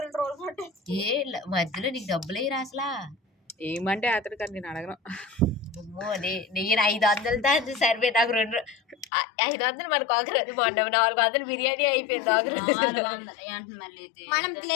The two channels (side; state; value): right; drops out; at 9.1 s